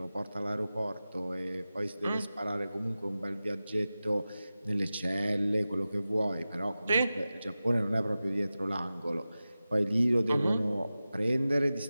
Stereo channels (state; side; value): inverted; both; correlation -0.95